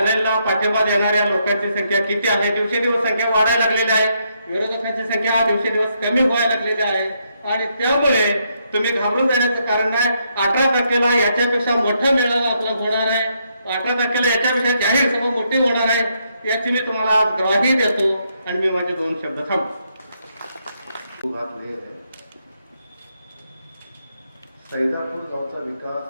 पाठिंबा देणाऱ्या लोकांची संख्या किती आहे. दिवसेंदिवस संख्या वाढायला लागलेली आहे. विरोधकांची संख्या दिवसेंदिवस कमी व्हायला लागलेली आहे आणि त्यामुळे तुम्ही घाबरून जाण्याचं कारण नाही. 18 याच्यापेक्षा मोठा मेळावा आपला होणार आहे. 18 याच्यापेक्षा जाहीर सभा मोठी होणार आहे याची मी तुम्हाला ग्वाही देतो आणि मी माझे 2 शब्द थांबतो. सैदापूर गावचा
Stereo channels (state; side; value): inverted; both; correlation -0.77